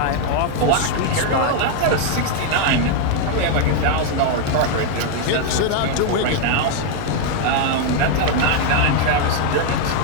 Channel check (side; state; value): both; different; correlation 0.01